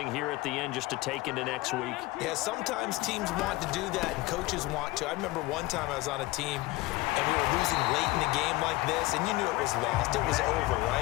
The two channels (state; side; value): quieter; right; 19.9 dB